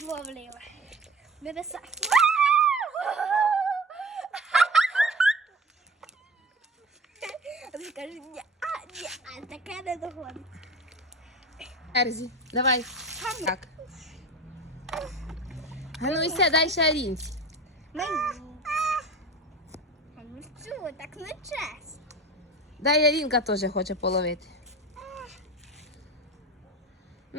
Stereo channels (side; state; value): both; normal; correlation 0.35